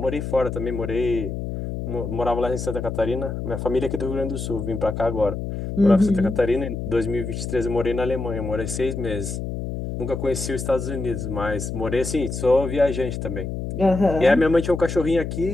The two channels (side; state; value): left; noise; hum, 5 dB below the sound